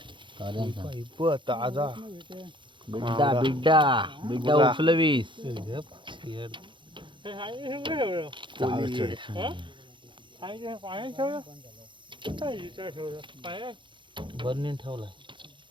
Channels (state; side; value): late; left; 0.23 ms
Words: ताजा बिड्डा बिड्डा बिड्डा उफलवीस. बर्नीन ठेवलाय.